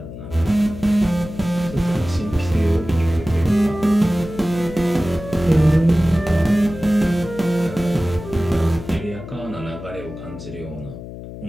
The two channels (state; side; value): noise; left; hum, 12 dB below the sound